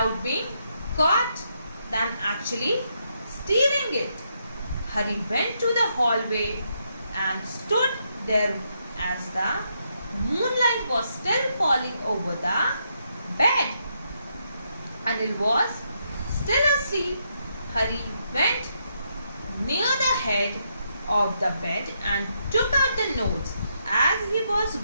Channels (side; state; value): both; inverted; correlation -0.78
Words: being caught than actually stealing it. Hari went to the hallway and stood there as the moonlight was still falling over the bed. Anil was still asleep. Hari went near the head of the bed and took out the notes. As he was